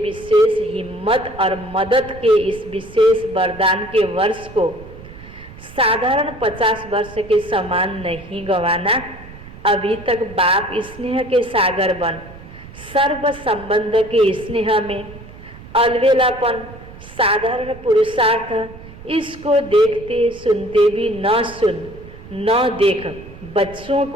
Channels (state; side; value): noise; right; rumble, 17 dB below the sound